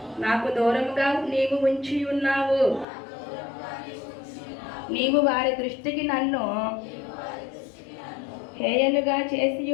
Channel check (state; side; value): drops out; right; at 2.9 s